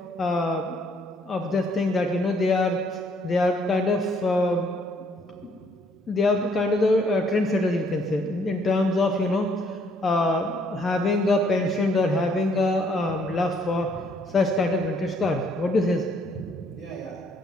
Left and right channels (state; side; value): normal; both; correlation 0.66